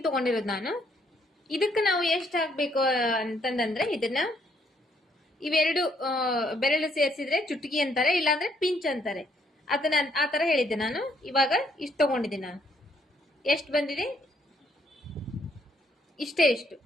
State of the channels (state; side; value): normal; both; correlation 0.69